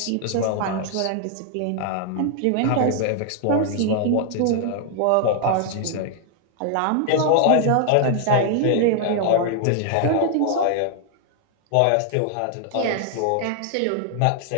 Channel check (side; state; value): both; different; correlation 0.00